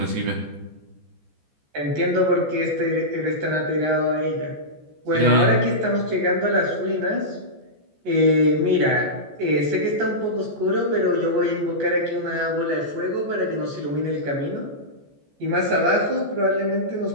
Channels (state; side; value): late; left; 14 ms